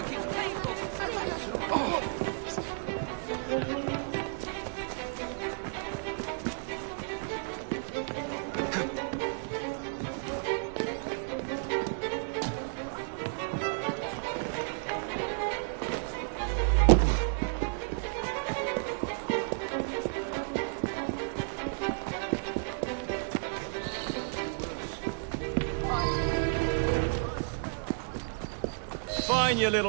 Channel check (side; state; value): left; silent; digital silence